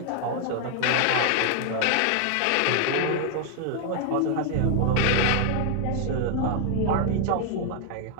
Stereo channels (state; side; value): different; both; correlation 0.00